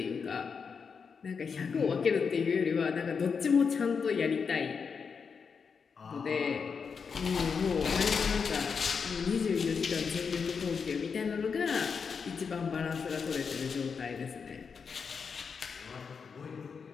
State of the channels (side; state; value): right; quieter; 5.8 dB